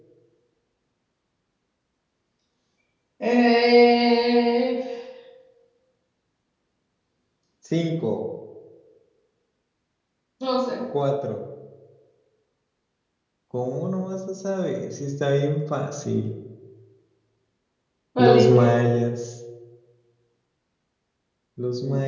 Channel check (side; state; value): both; identical; correlation 1.00